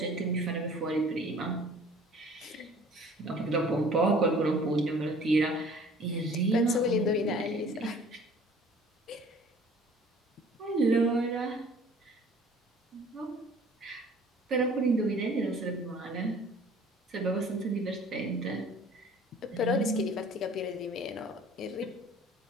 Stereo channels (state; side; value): normal; both; correlation 0.51